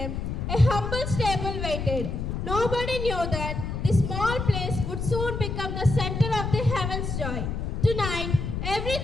a humble stable waited. Nobody knew that this small place would soon become the center of the heaven's joy. Tonight,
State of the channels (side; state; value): left; noise; rumble, 3 dB below the sound